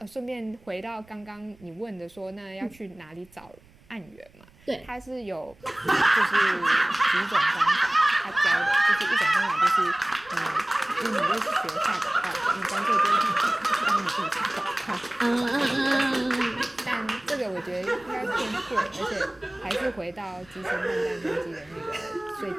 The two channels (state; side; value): noise; right; rumble, 28 dB below the sound